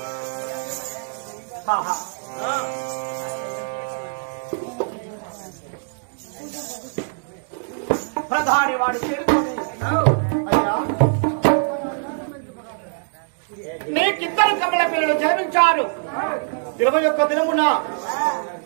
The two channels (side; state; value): left; silent; digital silence